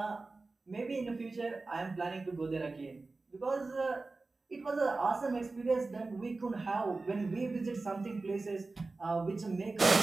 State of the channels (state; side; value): quieter; left; 3.6 dB